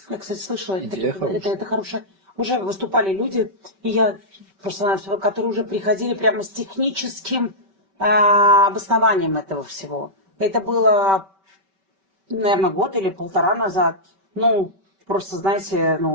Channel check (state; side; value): late; left; 5.2 ms